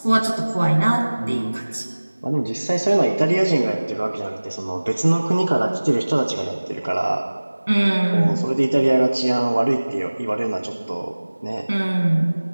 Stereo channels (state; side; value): inverted; both; correlation -1.00